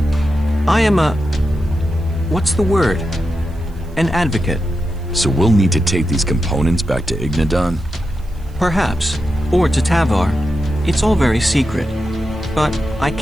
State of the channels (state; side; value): noise; right; hiss, 30 dB below the sound